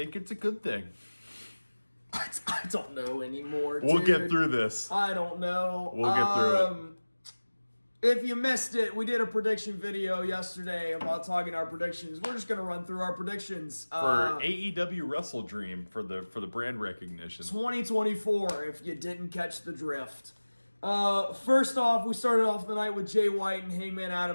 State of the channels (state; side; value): inverted; both; correlation -1.00